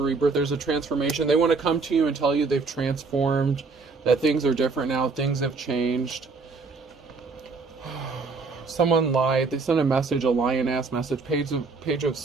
rebirth, there's a transformation. They want to come to you and tell you they've transformed, that things are different now, things have changed. Someone lied. They sent a message, a lion-ass message, page of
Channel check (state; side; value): quieter; left; 4.2 dB